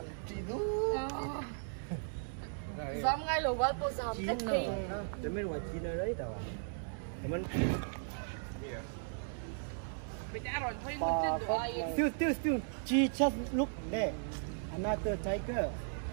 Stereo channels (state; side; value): silent; left; digital silence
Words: chỉ đủ dám ngay lầu vào tôi dám cách thì Để mình ngoài chín ở đấy đâu à? Mình Still. She just look there. Another tiger.